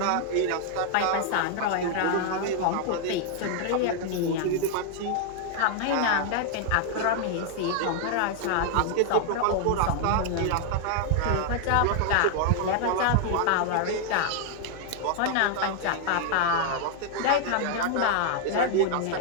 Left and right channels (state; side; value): different; both; correlation 0.00